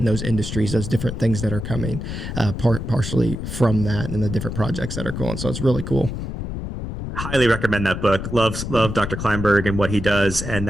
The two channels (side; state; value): left; noise; rumble, 6 dB below the sound